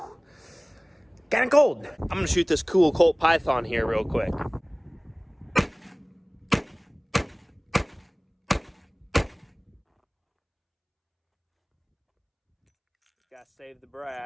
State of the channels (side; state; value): both; identical; correlation 1.00